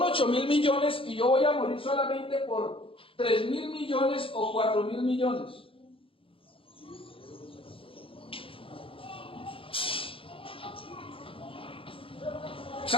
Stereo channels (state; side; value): late; right; 0.26 ms